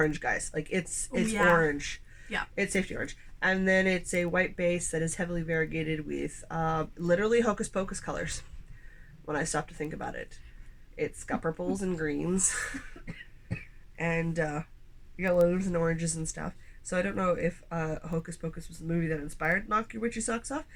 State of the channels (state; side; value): identical; both; correlation 1.00